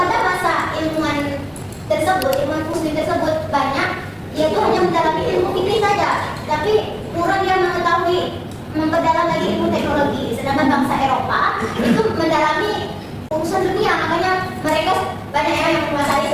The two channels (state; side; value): identical; both; correlation 1.00